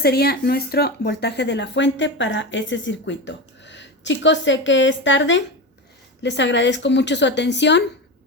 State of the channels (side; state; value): both; normal; correlation 0.21